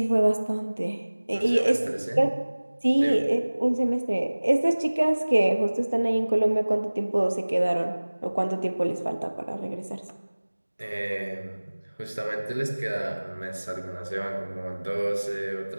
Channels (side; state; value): both; inverted; correlation -1.00